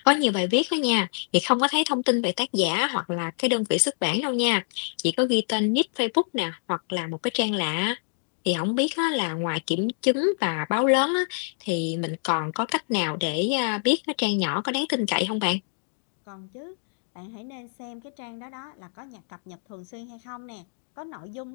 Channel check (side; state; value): right; silent; digital silence